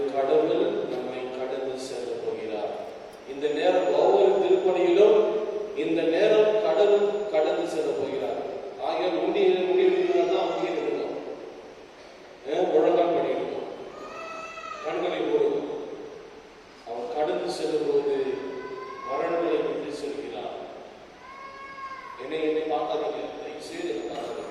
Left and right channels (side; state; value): both; identical; correlation 1.00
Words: கடவுள் நம்மை கடந்து செல்ல போகிறார். இந்த நேரம் ஒவ்வொரு திருப்பணியிலும் இந்த நேரம் கடவுள் கடந்து செல்ல போகிறார். ஆகிய முடிவுதான் அங்கே இருக்கணும். முழங்கால் பண்ணிடணும், கண்களை மூடணும். அவர் கடந்து செல்லும் போது மரணங்களை விட்டு செல்கிறார். என்னை பார்க்காதீங்க, செய்து